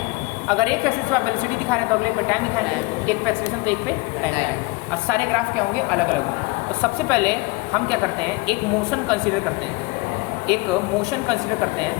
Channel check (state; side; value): quieter; right; 24.2 dB